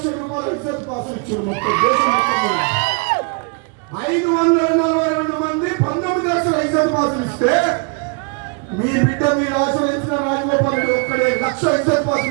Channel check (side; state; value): left; quieter; 35.2 dB